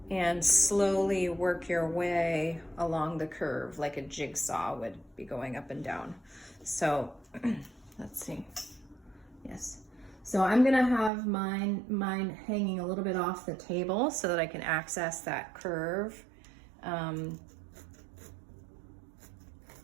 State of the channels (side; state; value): left; drops out; at 11.1 s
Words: and slowly work your way along the curve like a jigsaw would be going up and down. So let's see. Yes. So I'm gonna have mine hanging a little bit off the table so that I can access that curve. And